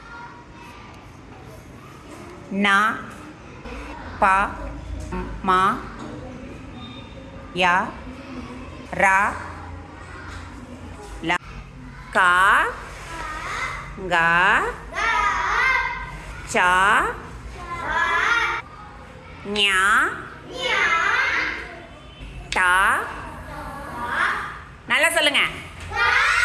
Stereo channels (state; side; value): identical; both; correlation 1.00